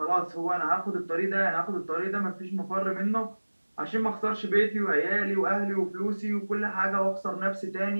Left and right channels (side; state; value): both; inverted; correlation -1.00